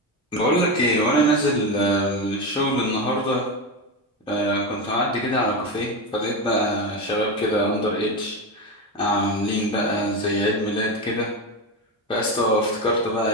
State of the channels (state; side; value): normal; both; correlation 0.16